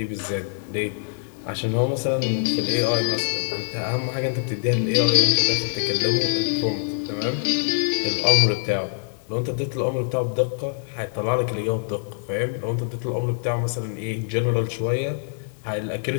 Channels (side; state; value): right; silent; digital silence